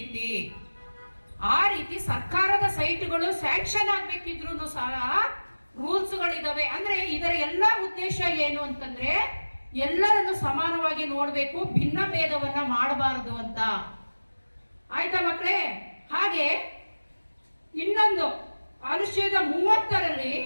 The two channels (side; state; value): both; inverted; correlation -1.00